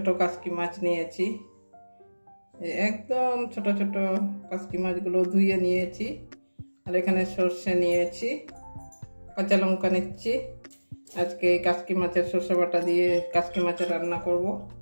কাসকি মাছ নিয়েছি, একদম ছোট ছোট কাসকি মাছগুলো ধুয়ে নিয়েছি। আর এখানে সর্ষে নিয়েছি, কাঁচা লঙ্কা নিচ্ছি। আজকে এই কাসকি মাছের সর্ষে বাটা দিয়ে কাসকি মাছের রান্না করব।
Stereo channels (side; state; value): both; inverted; correlation -1.00